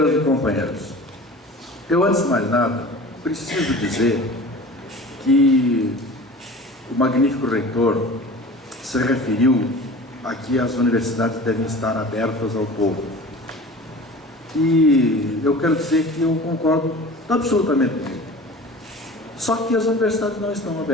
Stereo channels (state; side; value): normal; both; correlation 0.39